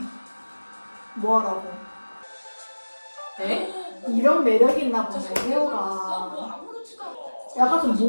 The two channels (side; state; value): both; inverted; correlation -1.00